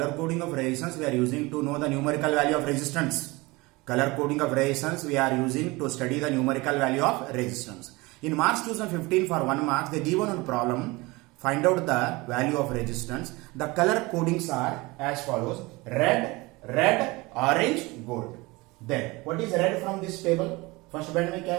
coding of resistance we are using to know the numerical value of resistance. Color coding of resistance we are using to study the numerical value of resistance. In March 2015 for 1 mark they given a problem, find out the value of resistance. The color codings are as follows: red, orange, gold. Then what is red from this table? First band में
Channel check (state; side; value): quieter; left; 23.3 dB